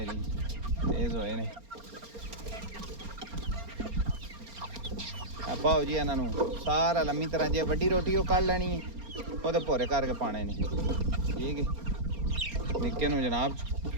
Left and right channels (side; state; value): left; late; 4.3 ms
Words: तेज़ होए ने। पाओ जी इन्हां नूं सारा लम्मी तरह जे वड्डी रोटी वो कढ़ लैनी है, वो भोरे करके पाने ने। ठीक है, निक्के नूं जनाब